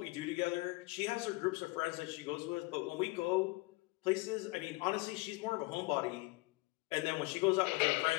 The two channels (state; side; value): quieter; right; 24.3 dB